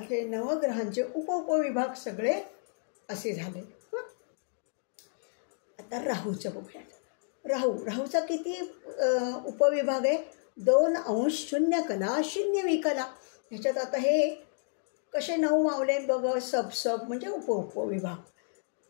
नवग्रहांचे उपविभाग सगळे असे झाले. आता राहूचं बघूयात. राहूचा किती उपविभाग आहे? 2° 0 कला 0 विकला. ह्याच्यात आता हे कसे 9 मावले बघ, सब म्हणजे उपविभाग.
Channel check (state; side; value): silent; right; digital silence